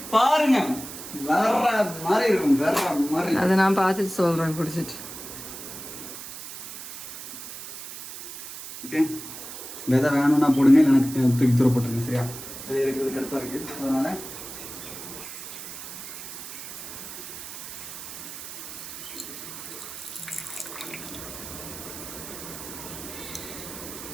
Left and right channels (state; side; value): noise; right; hiss, 11 dB below the sound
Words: பாருங்க, வேற மாதிரி இருக்கும், வேற மாதிரி. அதை நான் பார்த்துட்டு சொல்றேன் குடிச்சிட்டு. ஓகே, விதை வேணும்னா போடுங்க, எனக்கு தூக்கி தூர போட்டுருங்க. சரியா? விதை எடுக்கிறது கரெக்டாக இருக்கு. அதனால